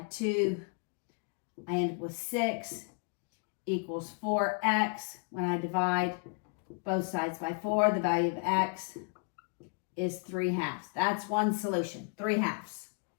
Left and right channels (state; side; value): quieter; right; 37.9 dB